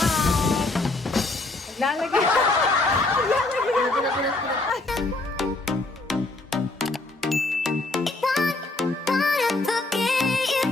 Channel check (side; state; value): right; quieter; 3.0 dB